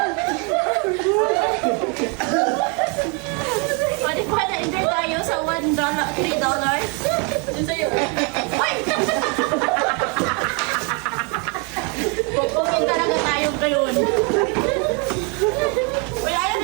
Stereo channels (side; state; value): left; quieter; 34.3 dB